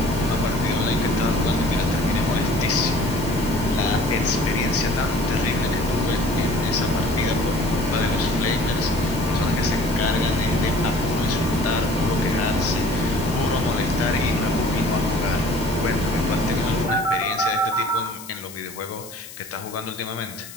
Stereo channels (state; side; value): noise; left; hiss, 15 dB below the sound